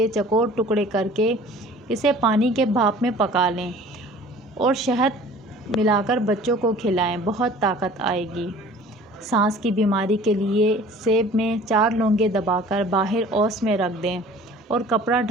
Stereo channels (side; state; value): both; normal; correlation 0.47